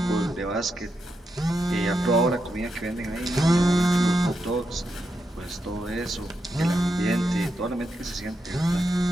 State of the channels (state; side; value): normal; both; correlation 0.85